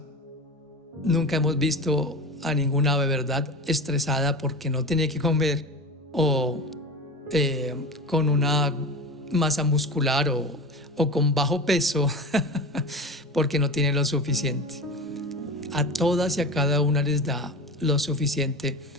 nunca hemos visto a ninguna ave, ¿verdad?, estresada porque no tiene que comer o con una masa muscular o con bajo peso porque no tienen lo suficiente. A todas y a cada una les da lo suficiente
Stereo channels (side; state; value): both; normal; correlation 0.28